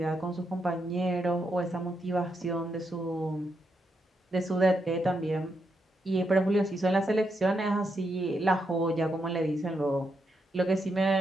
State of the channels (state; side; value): normal; both; correlation 0.82